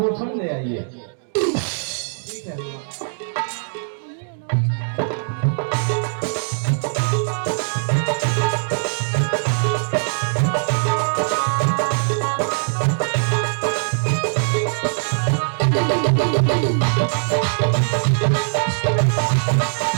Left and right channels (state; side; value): silent; left; digital silence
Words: ले आइए। ठीक है हनुमान।